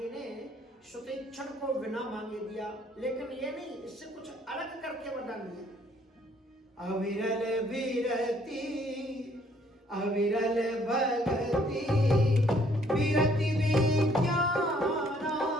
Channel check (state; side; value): normal; both; correlation 0.64